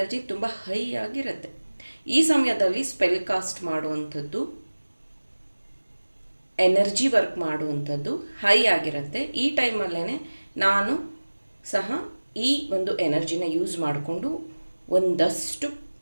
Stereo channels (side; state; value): both; inverted; correlation -1.00